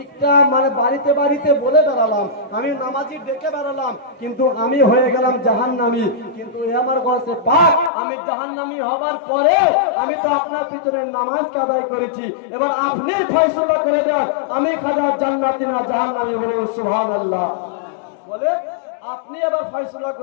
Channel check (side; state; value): right; drops out; at 7.9 s